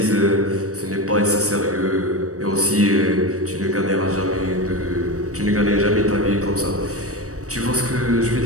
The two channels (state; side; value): late; left; 0.65 ms